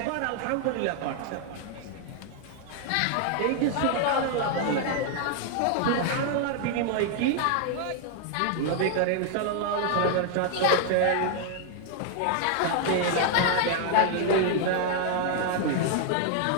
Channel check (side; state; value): both; different; correlation 0.00